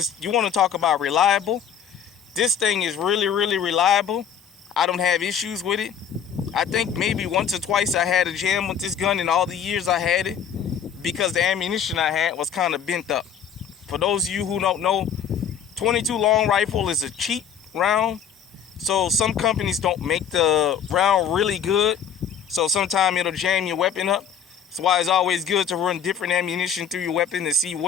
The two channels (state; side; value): quieter; right; 7.7 dB